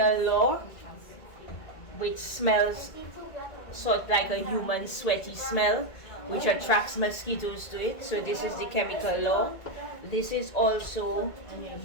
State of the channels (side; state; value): right; late; 1.9 ms